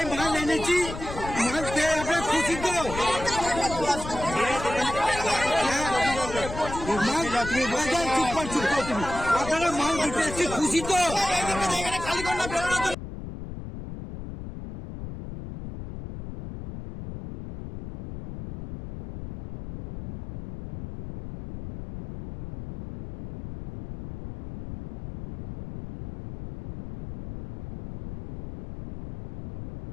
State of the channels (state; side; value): noise; left; rumble, 10 dB below the sound